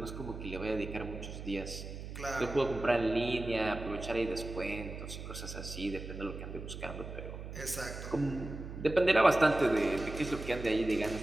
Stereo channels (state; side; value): noise; right; hum, 9 dB below the sound